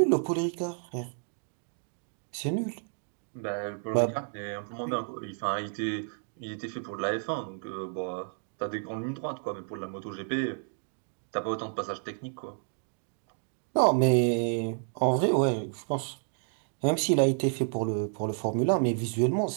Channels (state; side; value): silent; left; 57 dB below the other